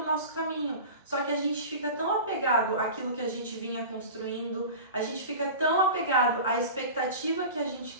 o nosso caminho. Só que a gente fica tão apegado àquilo que a gente vinha construindo, a gente fica tão apegado à expectativa que a gente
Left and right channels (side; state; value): both; inverted; correlation -0.34